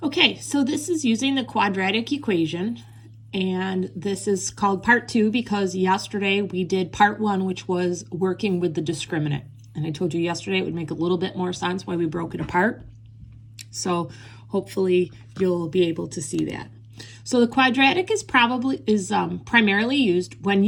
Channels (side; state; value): both; identical; correlation 1.00